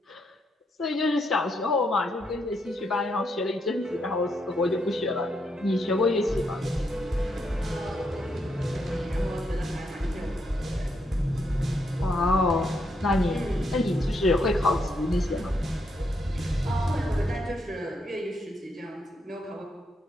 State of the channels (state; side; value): normal; both; correlation 0.78